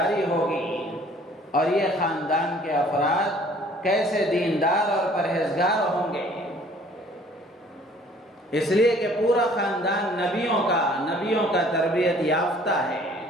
ہوگی، اور یہ خاندان کے افراد کیسے دیندار اور پرہیزگار ہوں گے۔ اس لیے کہ پورا خاندان نبیوں کا تربیت یافتہ ہے۔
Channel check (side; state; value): both; normal; correlation 0.55